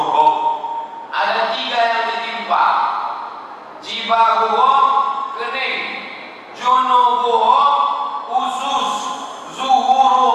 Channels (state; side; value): identical; both; correlation 1.00